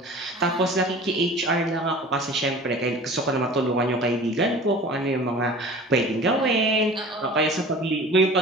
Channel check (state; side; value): normal; both; correlation 0.41